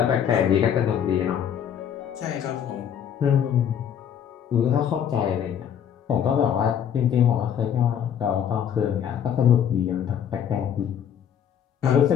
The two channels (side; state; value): right; quieter; 8.8 dB